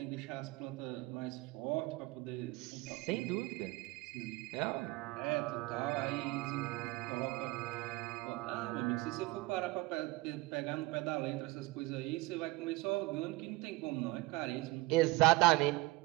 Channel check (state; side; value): quieter; left; 21.6 dB